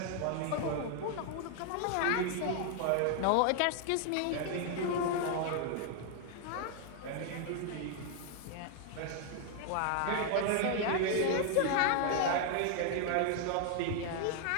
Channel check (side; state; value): both; different; correlation 0.00